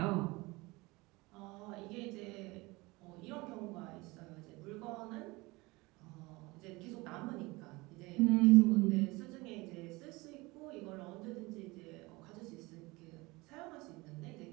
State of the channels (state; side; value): quieter; left; 23.0 dB